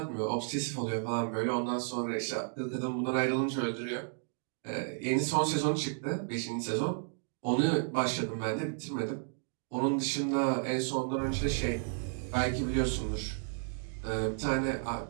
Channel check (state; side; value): silent; left; digital silence